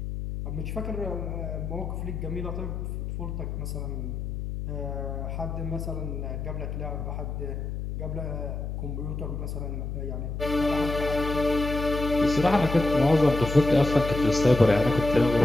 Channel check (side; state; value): left; noise; hum, 5 dB below the sound